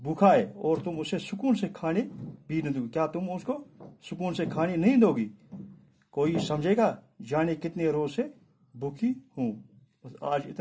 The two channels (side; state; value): both; identical; correlation 1.00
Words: ہے، اور تم اسے سکون سے کھانے بھی نہ دو گی، کیا تم اس کو سکون سے کھانے نہیں دو گی؟ کوئی سمجھے گا جانے کتنے روز سے بھوکی ہوں۔ بس آج